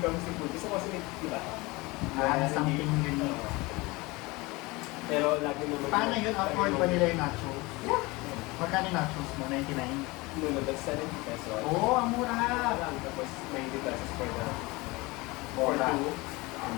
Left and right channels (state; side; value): quieter; right; 23.3 dB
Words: comes to food, gusto ko kasi, di ba? Something unique. Pero lagi naman. Paano yun? Afford ba nila yung nachos? Yeah. Magkano yung nachos mo? 99? No, that's 70 pesos. Oo, ang mura! Tapos 90 pesos for the Mura. 2, and